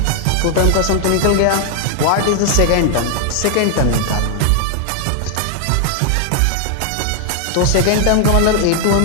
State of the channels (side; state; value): both; different; correlation 0.00